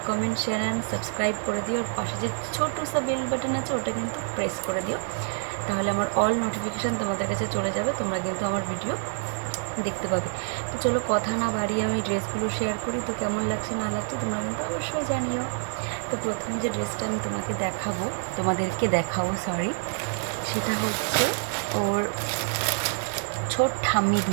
comment, share and subscribe করে দিও। আর পাশে যে ছোটো সা বেল বাটন আছে ওটা কিন্তু প্রেস করে দিও, তাহলে আমার অল নোটিফিকেশান তোমাদের কাছে চলে যাবে, তোমরা কিন্তু আমার ভিডিও দেখতে পাবে। তো চলো কথা না বাড়িয়ে আমি ড্রেসগুলো শেয়ার করি। তো কেমন লাগছে না লাগছে তোমরা কিন্তু অবশ্যই জানিও। তো প্রথমে যে ড্রেসটা আমি তোমাদেরকে দেখাবো সেটা হচ্ছে ওর ছোট ঠাম্মি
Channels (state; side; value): silent; left; 56 dB below the other